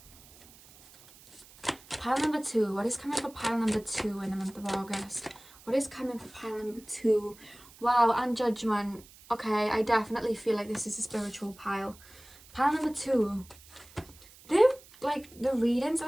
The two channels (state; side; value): noise; right; hiss, 23 dB below the sound